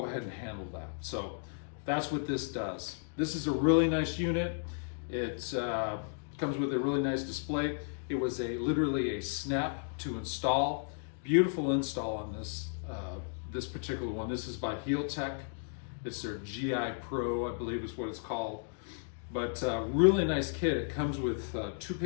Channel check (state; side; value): silent; right; digital silence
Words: ahead and handle that. So that's what this does. This is a really nice unit. It comes with a really nice display. It was literally a snap to install. Beautiful install on this particular one. This is by HealTech. It's their GIPro, I believe is what it's called. But really nice kit. It comes with 2